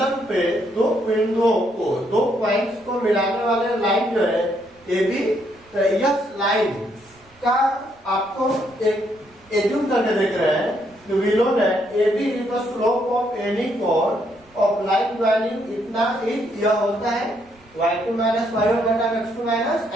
पे दो बिंदुओं को, दो पॉइंट्स को मिलाने वाले लाइन जो है ए बी, तो यह लाइन का आपको एक एज्यूम करके देख रहे हैं कि we know that A B is the slope of any chord of line joining, इतना इज यह होता है y2 माइनस y1 बटा x2 माइनस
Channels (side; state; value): right; noise; rumble, 30 dB below the sound